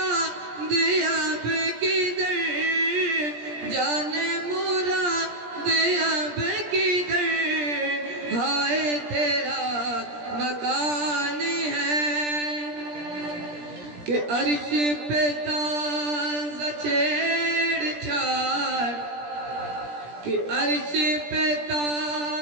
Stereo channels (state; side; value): late; left; 17 ms